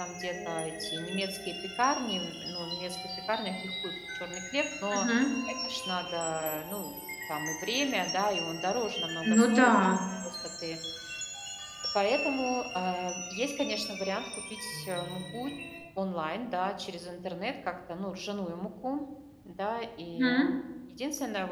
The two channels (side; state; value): both; identical; correlation 1.00